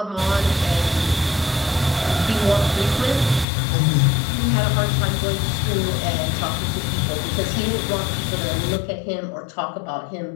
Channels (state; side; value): drops out; right; at 3.5 s